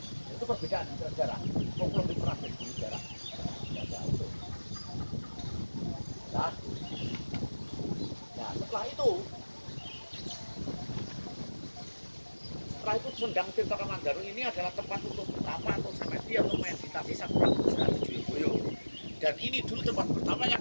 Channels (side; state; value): both; inverted; correlation -1.00